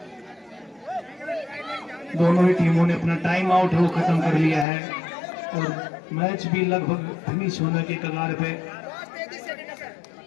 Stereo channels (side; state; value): right; drops out; at 4.7 s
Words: दोनों ही टीमों ने अपना टाइम आउट वो खत्म कर लिया है और मैच भी लगभग फिनिश होने के कगार पे